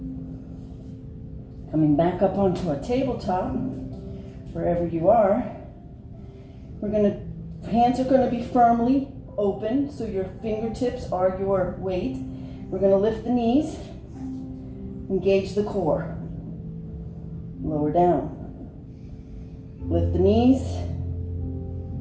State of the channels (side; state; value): both; identical; correlation 1.00